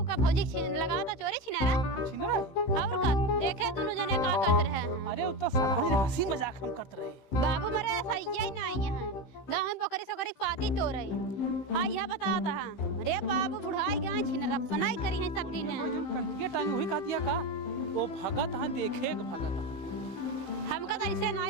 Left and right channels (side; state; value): right; late; 15 ms